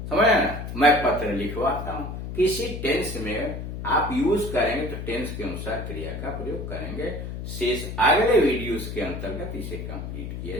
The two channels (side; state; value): left; noise; hum, 7 dB below the sound